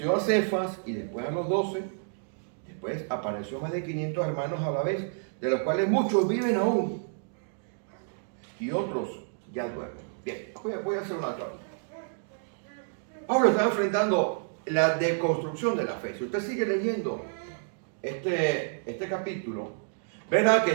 a Cefas y después a los 12, después apareció a más de 500 hermanos a la vez, de los cuales muchos viven aún y otros ya duermen. Bien, voy a hacer una aclaración. Pablo está enfrentando la deconstrucción de la fe. Si usted sigue leyendo este capítulo, verá que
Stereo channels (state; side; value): silent; left; digital silence